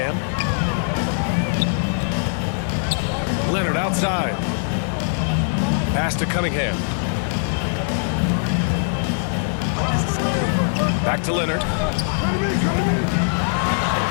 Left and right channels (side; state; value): right; silent; 62 dB below the other